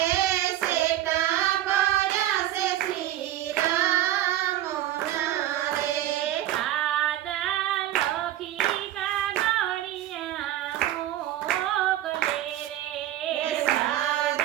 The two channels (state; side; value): quieter; left; 13.4 dB